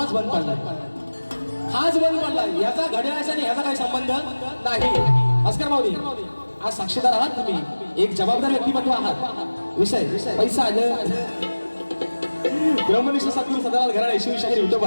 बंद पडला, हाच बंद पडला. याचा घड्याळाचा आणि ह्याचा काही संबंध नाही. भास्कर माऊली आज साक्षीदार आहात तुम्ही, एक जबाबदार व्यक्तिमत्व आहात. विषय पैसा आलं. ब्रह्मनिष्ठ सद्गुरू सदालाल घराणे शिवशाहीर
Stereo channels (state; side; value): inverted; both; correlation -1.00